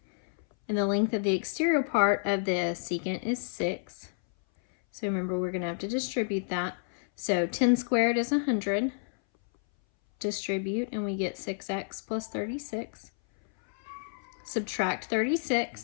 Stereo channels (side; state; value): right; silent; 58 dB below the other